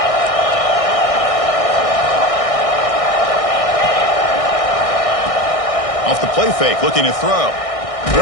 Off the play fake, looking to throw.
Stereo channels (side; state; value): right; late; 1.6 ms